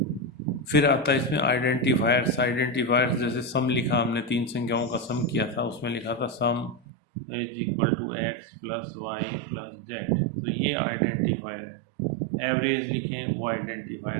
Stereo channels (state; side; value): drops out; left; at 6.8 s